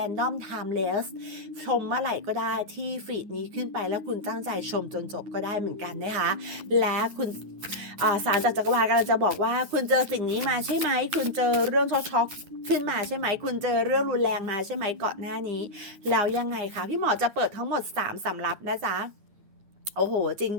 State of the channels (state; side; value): late; left; 9.7 ms